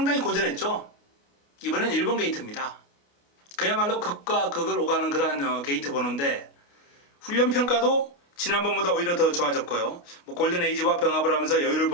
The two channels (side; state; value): right; late; 29 ms